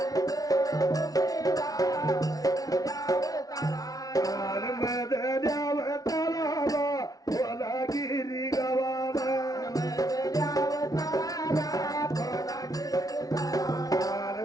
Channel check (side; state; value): right; late; 0.18 ms